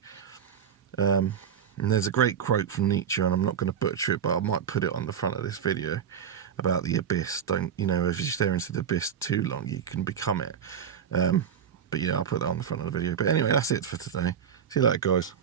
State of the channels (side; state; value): left; quieter; 8.0 dB